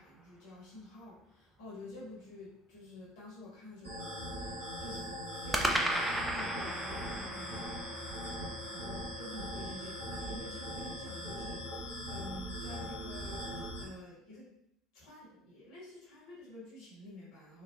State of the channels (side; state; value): both; normal; correlation 0.55